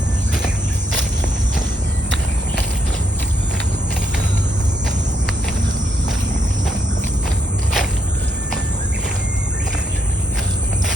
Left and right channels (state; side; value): normal; both; correlation 0.77